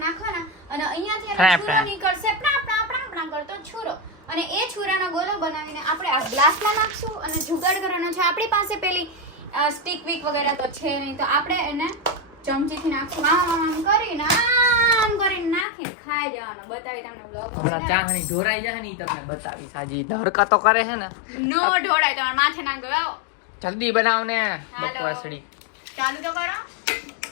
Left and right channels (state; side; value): drops out; right; at 15.7 s